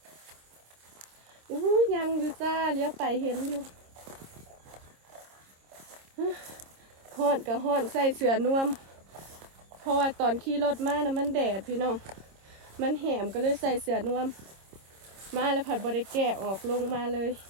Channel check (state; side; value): late; left; 26 ms